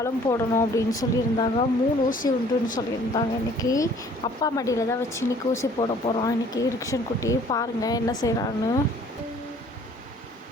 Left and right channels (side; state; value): both; normal; correlation 0.55